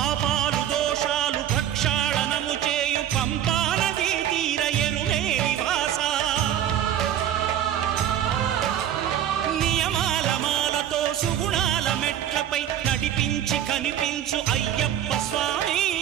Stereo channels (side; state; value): left; quieter; 10.6 dB